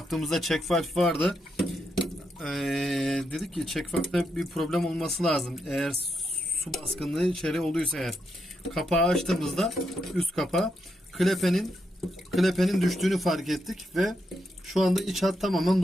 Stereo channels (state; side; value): normal; both; correlation 0.82